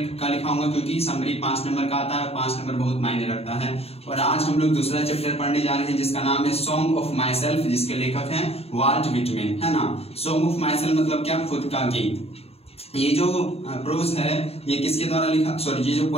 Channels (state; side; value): late; right; 0.29 ms